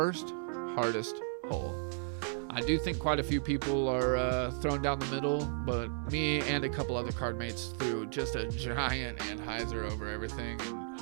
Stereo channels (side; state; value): left; silent; digital silence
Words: hardest hole. I do think quite a few people are thrown down the middle, but me and a couple other card mates threw just a giant Anheuser over everything and